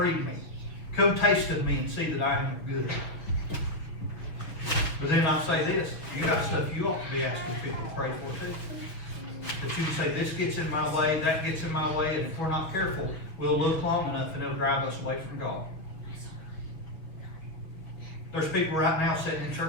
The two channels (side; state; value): right; late; 6.4 ms